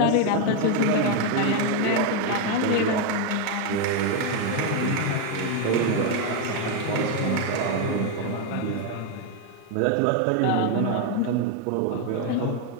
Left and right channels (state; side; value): different; both; correlation 0.01